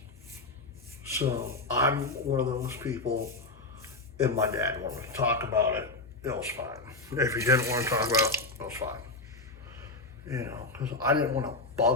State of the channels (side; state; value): right; quieter; 3.1 dB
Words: so I'm one of those people. If my dad wanted to talk about it, it was fine. If he didn't want to talk about it, it was fine. You know, because I didn't want to